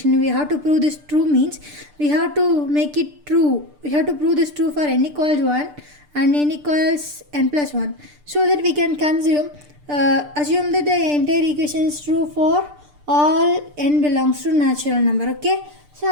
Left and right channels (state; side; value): late; left; 6.7 ms